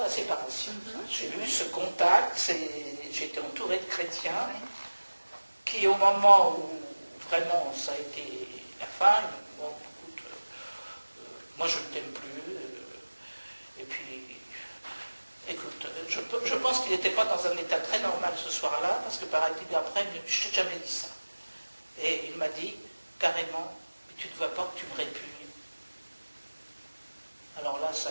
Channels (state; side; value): inverted; both; correlation -1.00